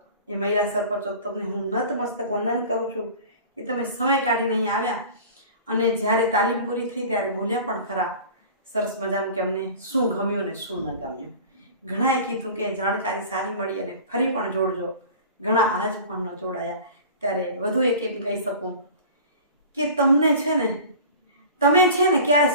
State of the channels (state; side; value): inverted; both; correlation -0.40